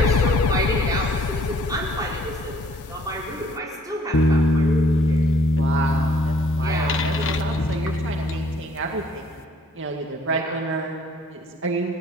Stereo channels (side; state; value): both; normal; correlation 0.60